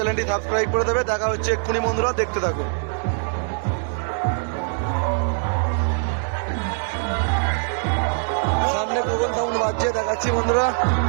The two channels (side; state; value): left; silent; 64 dB below the other